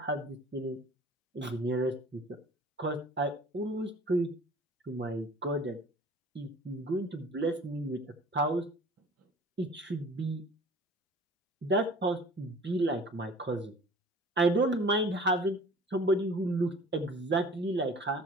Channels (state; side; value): normal; both; correlation 0.47